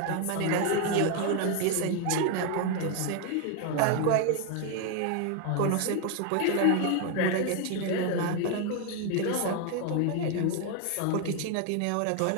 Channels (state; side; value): different; both; correlation 0.01